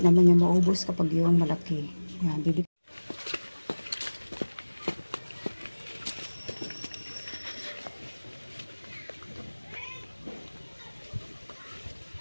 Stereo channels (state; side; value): inverted; both; correlation -1.00